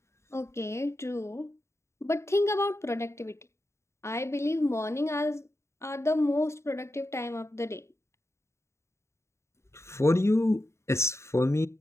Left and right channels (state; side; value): late; right; 0.13 ms